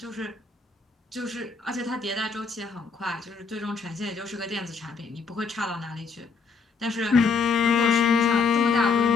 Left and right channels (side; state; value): right; quieter; 5.0 dB